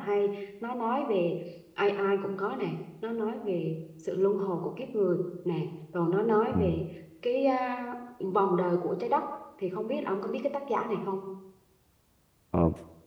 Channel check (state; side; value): identical; both; correlation 1.00